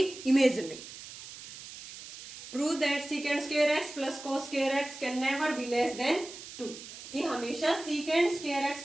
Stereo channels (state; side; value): noise; right; hiss, 13 dB below the sound